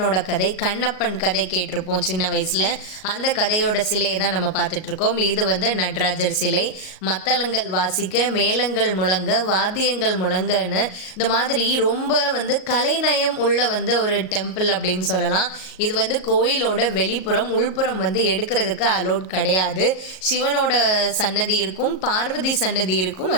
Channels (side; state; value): right; late; 38 ms